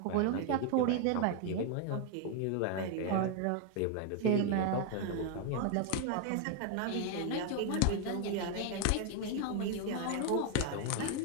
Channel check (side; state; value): both; different; correlation 0.00